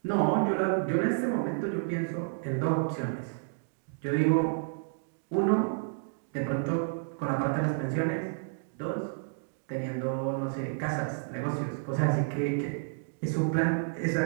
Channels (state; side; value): silent; left; digital silence